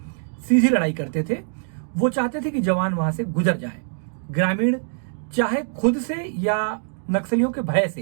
सीधी लड़ाई करते थे। वो चाहते थे कि जवान वहां से गुजर जाए। ग्रामीण चाहे खुद से या नक्सलियों के भय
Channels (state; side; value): silent; left; digital silence